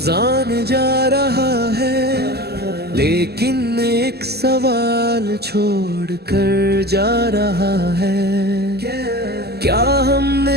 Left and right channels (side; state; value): left; late; 0.46 ms